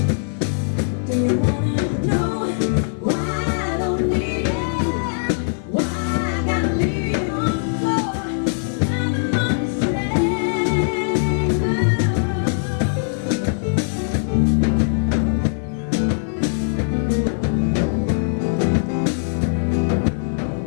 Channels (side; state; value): right; silent; 58 dB below the other